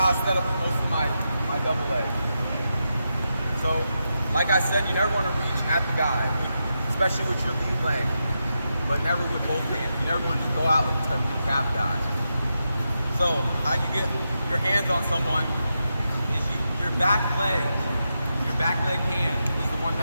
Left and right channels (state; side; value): inverted; both; correlation -0.87